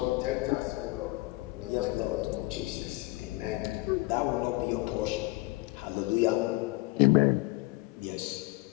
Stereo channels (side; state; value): right; quieter; 23.0 dB